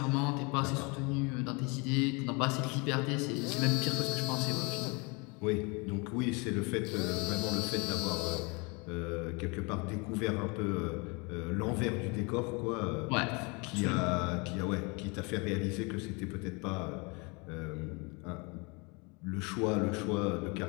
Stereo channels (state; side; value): quieter; right; 29.8 dB